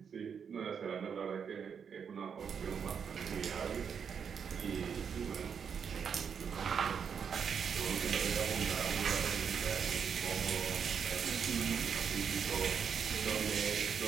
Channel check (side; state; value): left; quieter; 7.0 dB